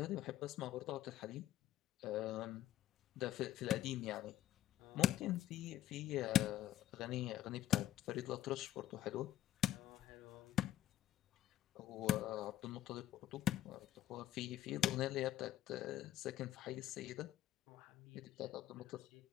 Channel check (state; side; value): quieter; right; 12.6 dB